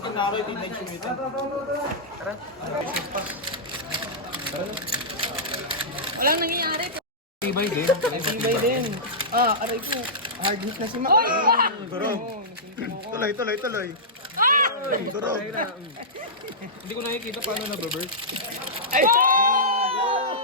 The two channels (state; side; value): normal; both; correlation -0.14